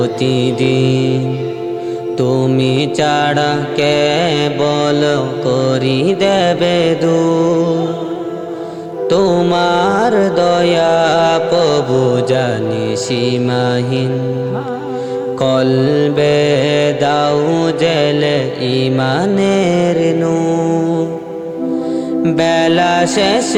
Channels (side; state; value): both; identical; correlation 1.00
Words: তুমি ছাড়া কে বল করি দেবে দূর। তোমার দয়া প্রভু জানি সীমাহীন, কলবে দাও জেলে ইমানের নূর। বেলা